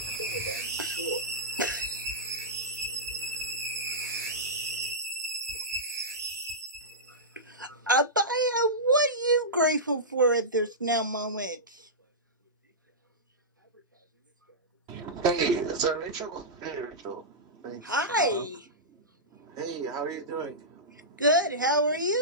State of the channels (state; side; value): normal; both; correlation -0.14